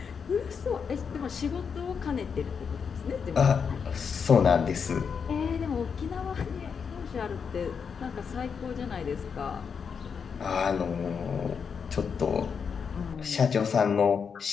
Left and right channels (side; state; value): right; quieter; 6.3 dB